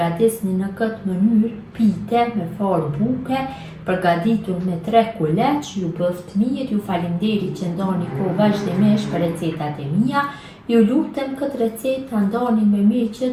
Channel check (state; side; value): identical; both; correlation 1.00